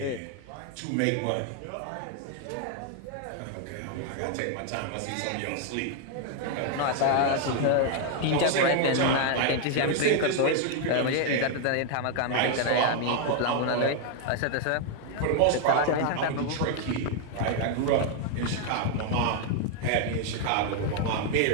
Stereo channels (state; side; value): different; both; correlation 0.00